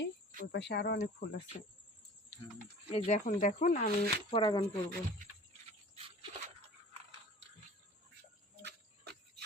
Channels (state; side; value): normal; both; correlation 0.43